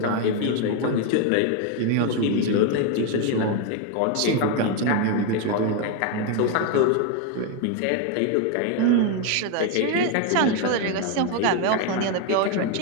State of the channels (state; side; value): different; both; correlation 0.01